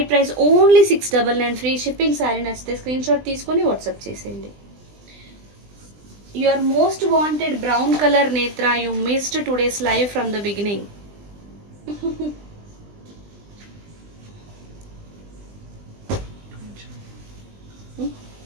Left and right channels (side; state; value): left; late; 20 ms